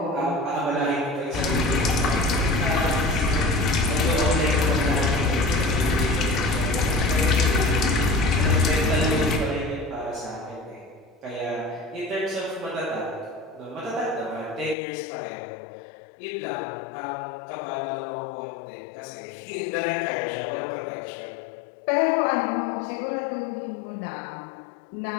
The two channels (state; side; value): drops out; right; at 14.8 s